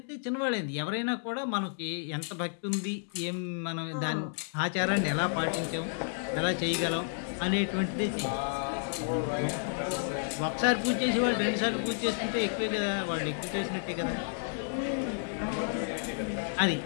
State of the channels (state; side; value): silent; right; digital silence